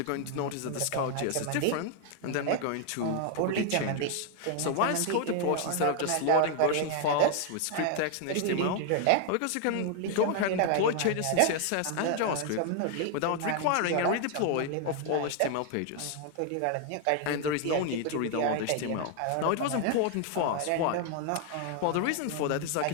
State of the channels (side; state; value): both; different; correlation 0.00